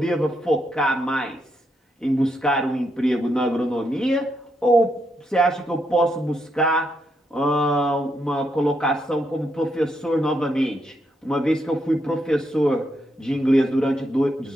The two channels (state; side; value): normal; both; correlation 0.79